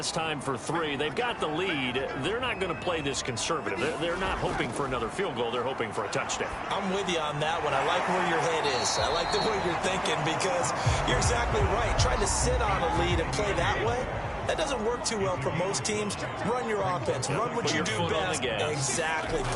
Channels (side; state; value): both; identical; correlation 1.00